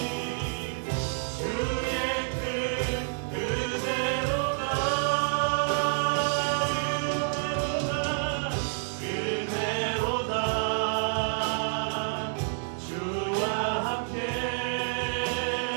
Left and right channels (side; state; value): left; silent; digital silence